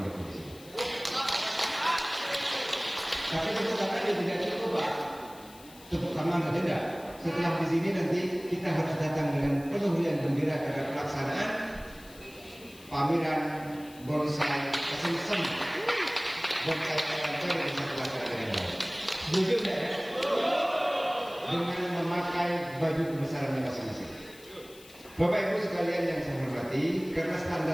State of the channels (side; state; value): left; noise; hiss, 21 dB below the sound